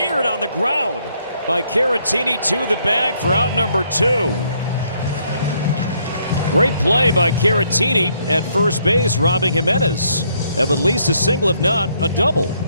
on the ground by Caratini to the bag for out number 2. Great play by Caratini at first base, robbing Jimenez of at least a single, if not a double.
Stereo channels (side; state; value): both; inverted; correlation -0.70